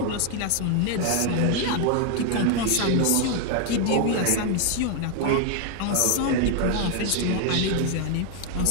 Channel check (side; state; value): both; different; correlation 0.00